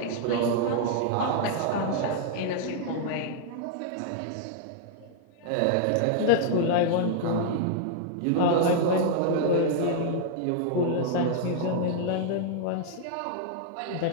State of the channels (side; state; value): both; different; correlation -0.01